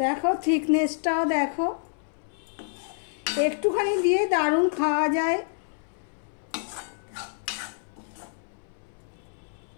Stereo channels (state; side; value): silent; right; 60 dB below the other